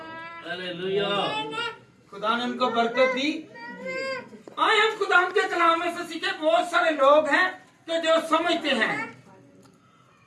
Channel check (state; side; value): identical; both; correlation 1.00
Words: हालेलुया। खुदा ने उनको बरकत दी। आए हम खुदा के कलाम में से सीखे। बहुत सारे लोग हैं कि जो समझते हैं